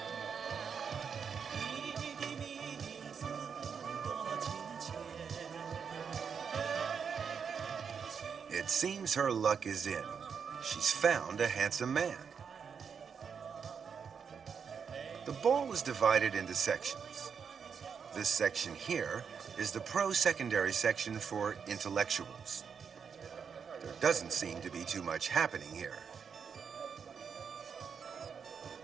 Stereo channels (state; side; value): quieter; left; 6.5 dB